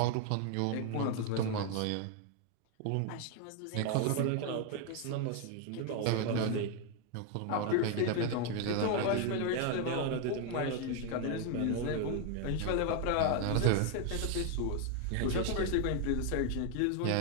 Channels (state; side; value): different; both; correlation 0.01